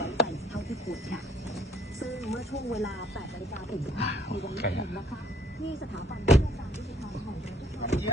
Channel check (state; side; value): normal; both; correlation 0.59